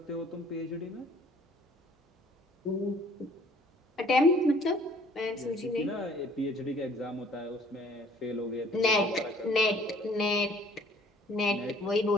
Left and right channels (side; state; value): both; normal; correlation 0.56